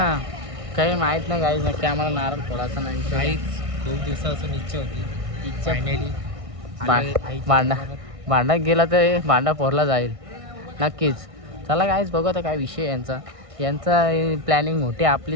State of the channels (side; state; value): left; late; 1.6 ms